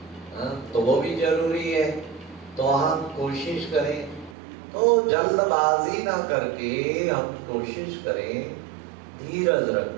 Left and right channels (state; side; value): drops out; left; at 4.4 s